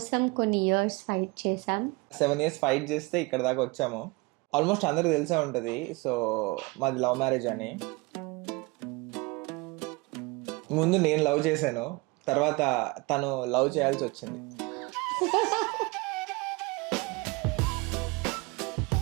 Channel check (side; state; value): left; quieter; 25.3 dB